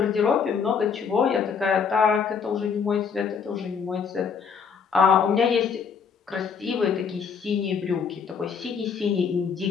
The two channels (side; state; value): right; quieter; 6.3 dB